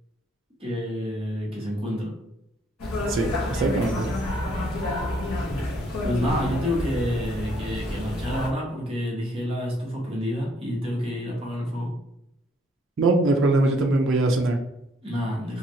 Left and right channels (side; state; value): both; normal; correlation 0.67